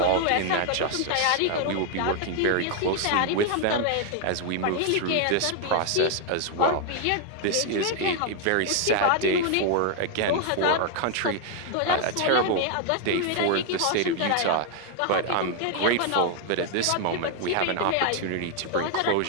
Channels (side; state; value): both; different; correlation 0.00